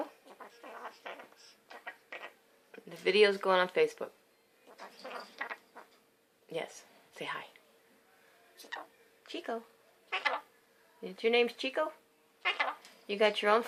The video's going on Facebook. Yes. Say hi. Chico. Your name's Chico? You got your own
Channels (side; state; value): both; identical; correlation 1.00